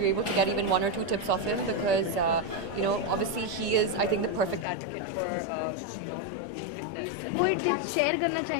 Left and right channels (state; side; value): drops out; right; at 4.7 s